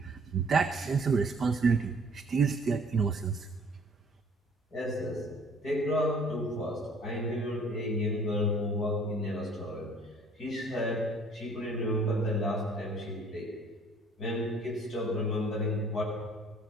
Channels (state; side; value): normal; both; correlation 0.56